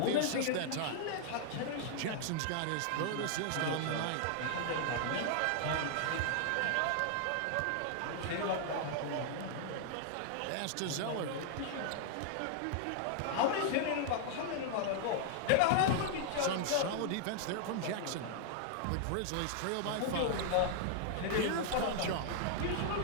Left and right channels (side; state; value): both; different; correlation -0.01